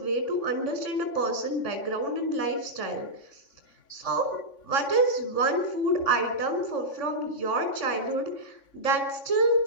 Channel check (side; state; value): right; late; 3.5 ms